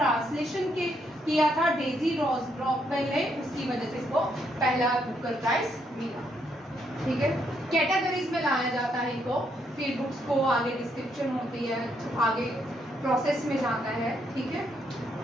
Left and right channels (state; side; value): normal; both; correlation 0.75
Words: किया था डेजी रॉकवेल ने, उसकी वजह से इसको पहला बुकर प्राइज मिला। ठीक है, कैटेगरीज में लाया जाता है इनको, फिर बुक्स को आगे डिस्क्रिप्शन होती है, आगे प्रोसेस में जाता है। ठीक है,